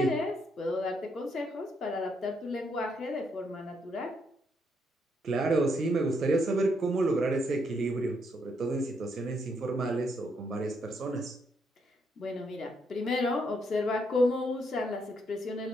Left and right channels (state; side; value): normal; both; correlation 0.75